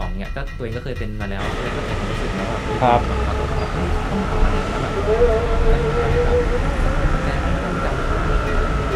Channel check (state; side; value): identical; both; correlation 1.00